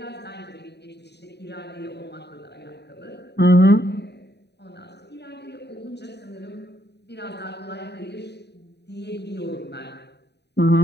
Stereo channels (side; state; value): right; late; 0.49 ms